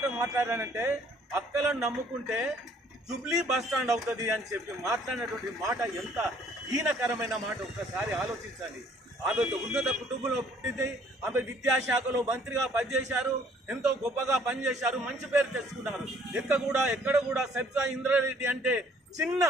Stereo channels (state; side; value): normal; both; correlation 0.60